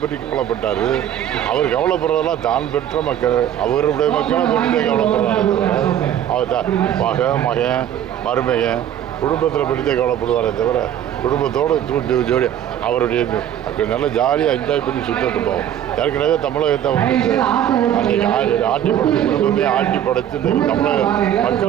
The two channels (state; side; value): quieter; left; 10.6 dB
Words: பற்றி கவலைப்பட்டார்? அவர் கவலைப்படுறதெல்லாம் தான் பெற்ற மக்கள், அவருடைய மக்களை பற்றி கவலைப்படுறாரு. அவர் மகன் மருமகன் குடும்பத்தில் பற்றித்தே கவலைப்படுவாரே தவிர குடும்பத்தோடு ஜோடி அவருடைய நல்லா ஜாலியாக என்ஜாய் பண்ணி சுற்றிட்டு போவோம். ஏற்கனவே தமிழகத்தை அன்றைக்கி ஆட்டி படைச்சு குடும்பமே ஆட்டி படைச்சு தமிழக